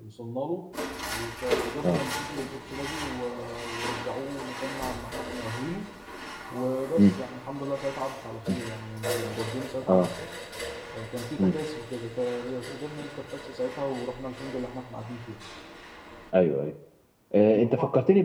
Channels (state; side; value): identical; both; correlation 1.00